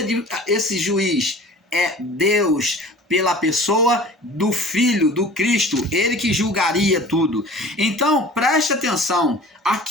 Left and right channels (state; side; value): normal; both; correlation 0.43